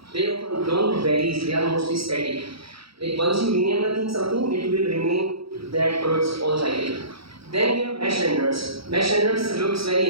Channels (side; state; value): left; late; 0.76 ms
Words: they often don't vary, they are mostly static. Like once you rename the thing something, it will remain that for its whole cycle. Then we have mesh renders. Mesh renders looks very